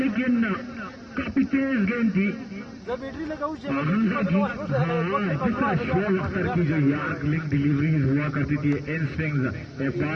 کافی تیز گیند تھی. حمزہ کی جس طرح شعیب اختر کی جو یارک لنک ڈیلیوریز ہوا کرتی تھی ان سوئنگز، ایک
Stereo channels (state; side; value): identical; both; correlation 1.00